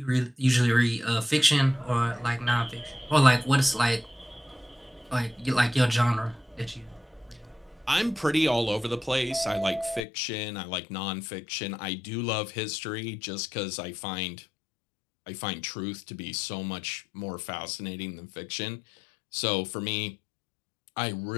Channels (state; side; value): drops out; right; at 10.0 s